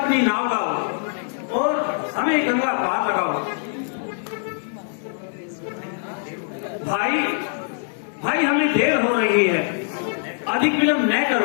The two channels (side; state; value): right; silent; digital silence